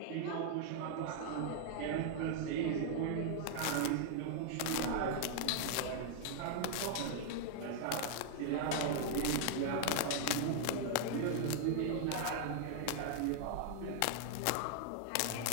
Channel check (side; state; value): both; different; correlation 0.00